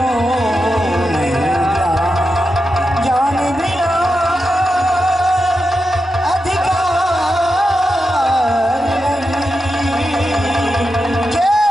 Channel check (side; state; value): both; normal; correlation 0.89